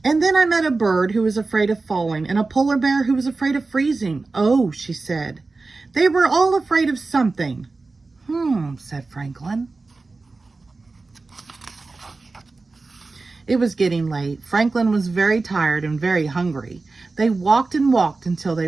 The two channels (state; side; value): quieter; left; 3.7 dB